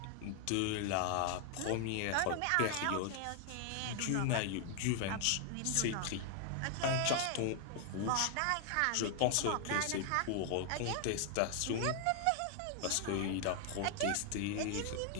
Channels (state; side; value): different; both; correlation 0.00